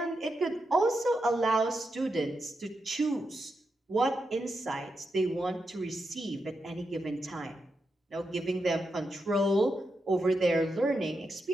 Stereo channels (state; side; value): normal; both; correlation 0.86